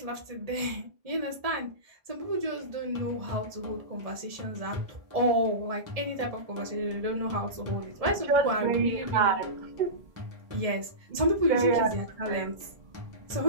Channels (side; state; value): left; late; 1.7 ms